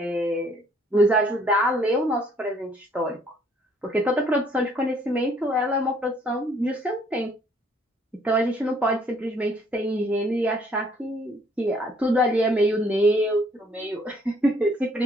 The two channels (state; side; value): normal; both; correlation 0.63